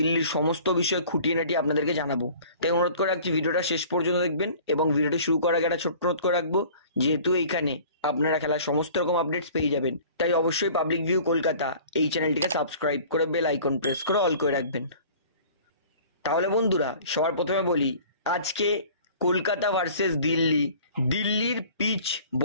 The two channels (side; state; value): both; inverted; correlation -0.47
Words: সমস্ত বিষয় খুঁটিনাটি আপনাদেরকে জানাবো। তাই অনুরোধ করে রাখছি ভিডিওটা শেষ পর্যন্ত দেখবেন এবং ভিডিওটি শুরু করার আগে একটা ছোট্ট অনুরোধ করে রাখবো, যেহেতু এইখানে আপনারা খেলার সমস্ত রকম আপডেটস পেয়ে যাবেন, তাই অবশ্যই পাবলিক ভিউ কলকাতা এই চ্যানেলটিকে সাবস্ক্রাইব করে বেল আইকন প্রেস করে অল করে রাখবেন। তাহলে বন্ধুরা, সবার প্রথমে বলি আজকে কলকাতা ভার্সেস দিল্লি, দিল্লির পিচ